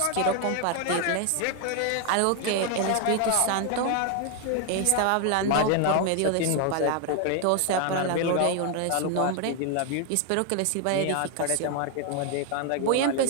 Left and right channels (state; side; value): different; both; correlation 0.01